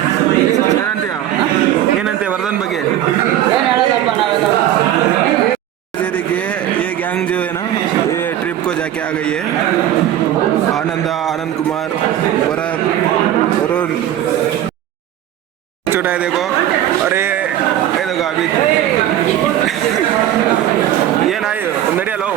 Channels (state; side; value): quieter; left; 11.9 dB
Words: ಏನಂತೆ वर्धन ಬಗ್ಗೆ देखिए ये गैंग जो है ना ये ट्रिप को जाके आ गई है। आनंद कुमार भरत वरुण छोटा है देखो। अरे ये देखो अभी ये ना नड़ियलो